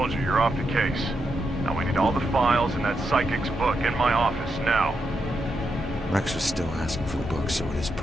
you you're off the case. Now we need all the files in that psychic's book in my office now. Rex was still asking for the book, so it is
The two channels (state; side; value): normal; both; correlation 0.83